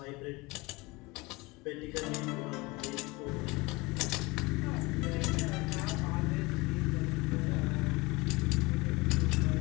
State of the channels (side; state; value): right; quieter; 24.1 dB